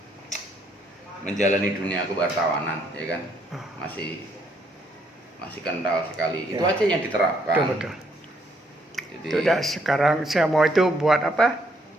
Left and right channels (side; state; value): both; normal; correlation 0.70